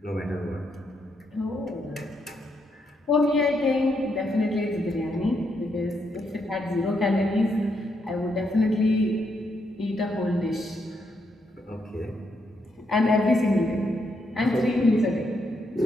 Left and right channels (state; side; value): normal; both; correlation 0.78